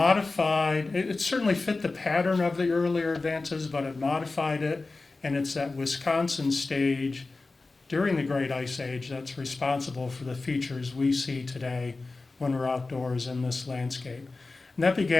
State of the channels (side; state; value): right; quieter; 3.6 dB